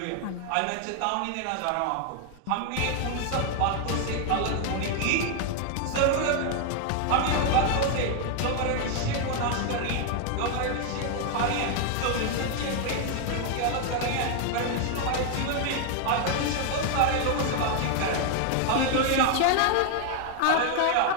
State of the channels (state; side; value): different; both; correlation 0.00